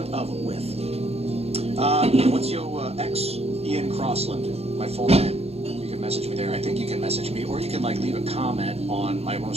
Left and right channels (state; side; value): late; left; 0.29 ms